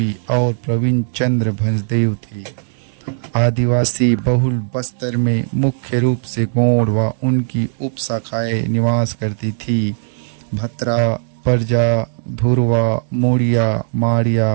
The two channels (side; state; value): left; silent; 68 dB below the other